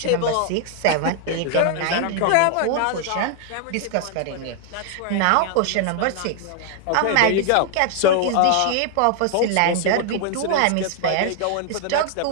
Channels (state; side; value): different; both; correlation 0.00